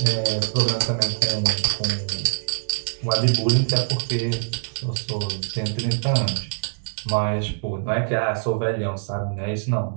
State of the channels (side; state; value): left; silent; digital silence